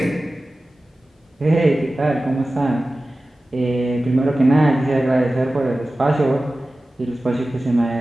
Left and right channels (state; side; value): normal; both; correlation 0.96